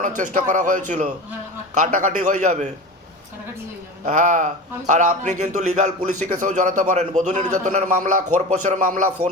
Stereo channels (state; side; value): normal; both; correlation 0.29